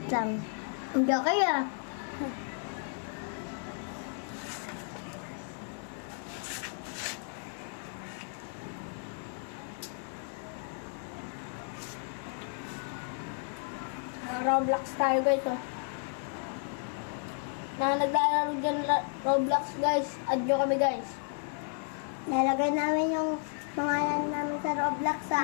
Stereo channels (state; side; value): silent; right; 56 dB below the other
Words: Ito. Hindi kaya. Roblox tayo guys, oh. Na naglalaro dyan Roblox guys. Add nyo kami guys. Nalagay namin yung pangalan namin sa Roblox